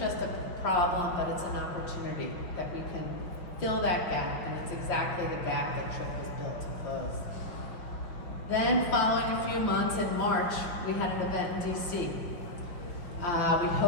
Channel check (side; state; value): right; late; 5.7 ms